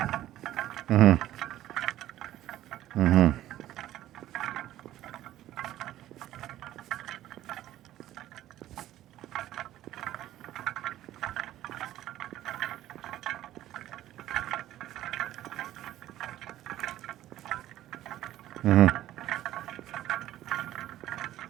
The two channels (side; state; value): left; quieter; 13.7 dB